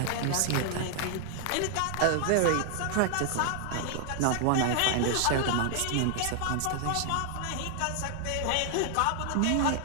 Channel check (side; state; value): both; different; correlation 0.00